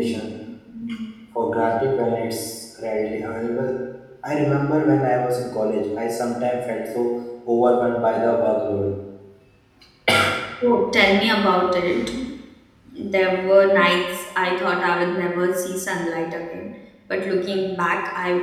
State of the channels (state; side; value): identical; both; correlation 1.00